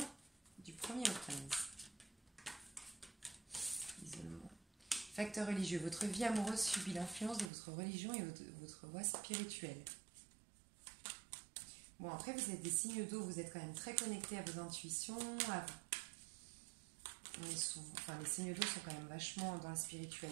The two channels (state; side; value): drops out; left; at 7.5 s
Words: du 1er au 15. Isolement. Facteur religieux. Votre vie amoureuse subit l'influence de votre religion et votre voie spirituelle. Bon, après, vous êtes des signes d'eau, vous êtes quand même très connectés à vos intuitions. Les signes d'eau sont quand même vachement dans la